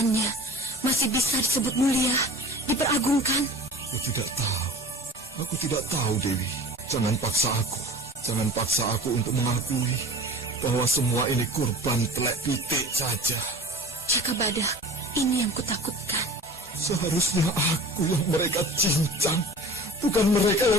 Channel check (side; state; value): both; normal; correlation 0.40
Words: masih bisa disebut mulia, diperagungkan? Aku tidak tahu. Aku tidak tahu, Dewi. Jangan paksa aku. Jangan paksa aku untuk mengakui bahwa semua ini korban telek pitik saja. Jakabada, ini yang kutakutkan. Seharusnya aku yang mereka cincang, bukan mereka yang